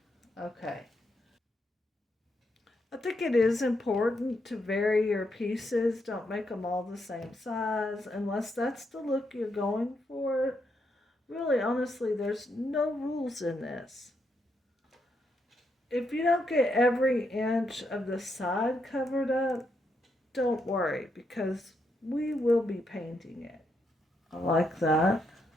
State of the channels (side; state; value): both; normal; correlation 0.79